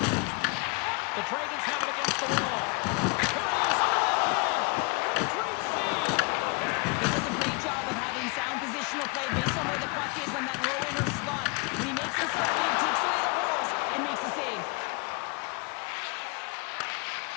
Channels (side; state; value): right; quieter; 29.5 dB